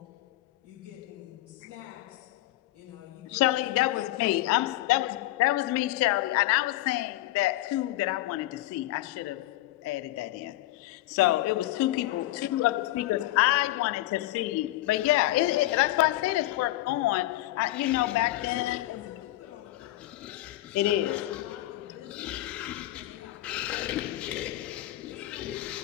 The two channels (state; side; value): quieter; right; 16.6 dB